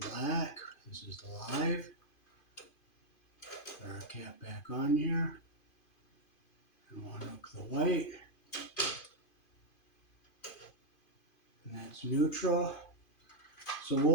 black. This is the live. Put our cap back on here, and we'll unhook the white, and that's neutral. So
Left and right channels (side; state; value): right; late; 2.5 ms